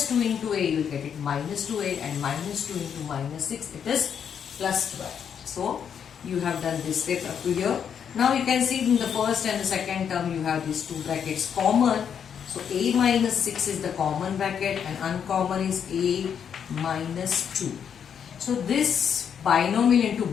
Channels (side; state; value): right; quieter; 7.8 dB